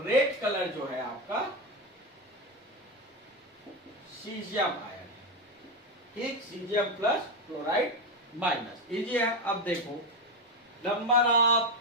रेड कलर जो है आपका सीजियम आयन। ठीक, caesium plus chloride minus, easy है। अब देखो नंबर ऑफ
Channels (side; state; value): both; normal; correlation 0.11